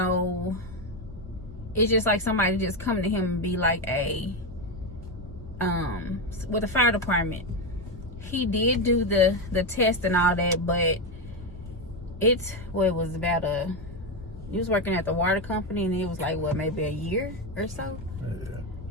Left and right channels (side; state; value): both; normal; correlation 0.10